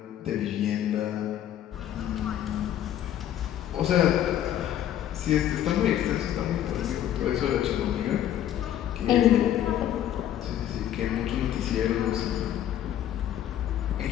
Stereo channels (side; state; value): right; quieter; 11.3 dB